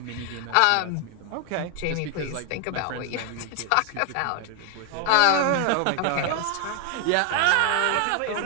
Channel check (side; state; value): both; different; correlation 0.01